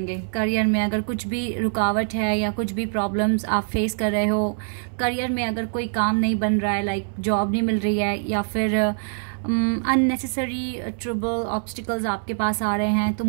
करियर में अगर कुछ भी रुकावट है या कुछ भी प्रॉब्लम्स आप फेस कर रहे हो, करियर में अगर कोई काम नहीं बन रहा है, लाइक जॉब नहीं मिल रही है, या फिर अननेसेसरी ट्रबल ऑब्स्टिकल्स आपके पास आ रहे हैं, तो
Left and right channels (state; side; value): silent; left; 63 dB below the other